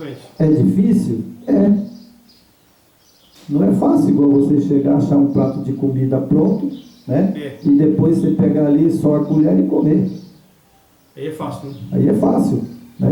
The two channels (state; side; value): identical; both; correlation 1.00